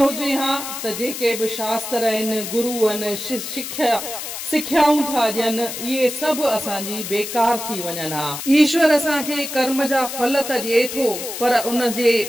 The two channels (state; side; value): noise; left; hiss, 7 dB below the sound